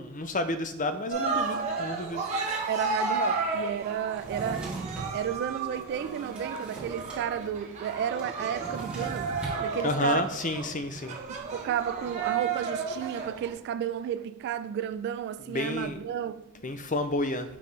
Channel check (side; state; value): left; quieter; 3.7 dB